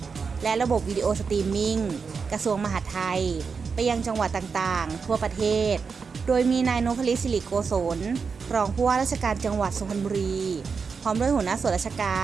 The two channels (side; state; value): left; quieter; 5.4 dB